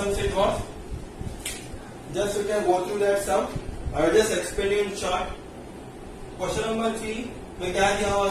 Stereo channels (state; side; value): identical; both; correlation 1.00